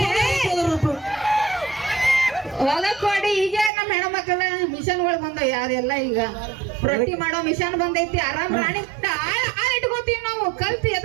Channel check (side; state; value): left; drops out; at 3.7 s